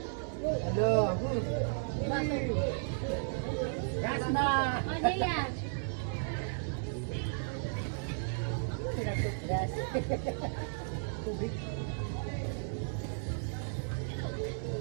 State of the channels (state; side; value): silent; left; 55 dB below the other